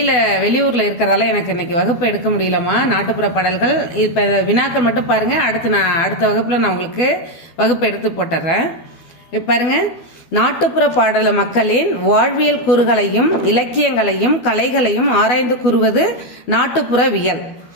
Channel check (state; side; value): late; right; 12 ms